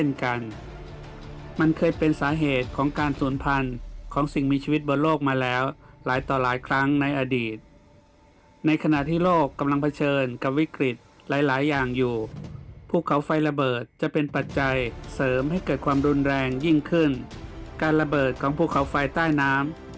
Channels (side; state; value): both; identical; correlation 1.00